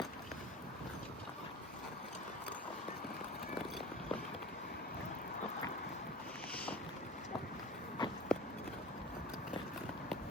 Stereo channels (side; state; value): both; normal; correlation 0.36